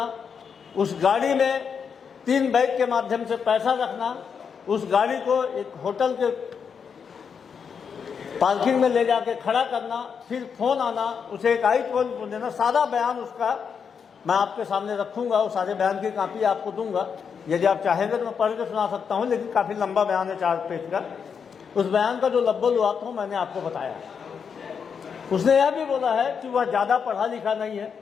उस गाड़ी में 3 बैग के माध्यम से पैसा रखना, उस गाड़ी को एक होटल के पार्किंग में ले जाके खड़ा करना, फिर फोन आना, उसे एक आईफोन देना। सारा बयान उसका मैं आपके सामने रखूंगा, उस सारे बयान की कॉपी आपको दूंगा। यदि आप चाहेंगे तो मैं पढ़ के सुना सकता हूं, लेकिन काफी लंबा बयान है, 4 पेज का। उस बयान का जो लब्बल हुआ था मैंने आपको बताया। उसने यह भी बोला है कि वह ज्यादा पढ़ा लिखा नहीं है।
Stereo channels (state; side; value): quieter; right; 6.6 dB